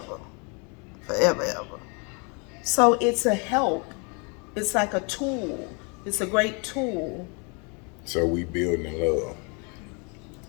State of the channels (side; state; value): right; quieter; 33.8 dB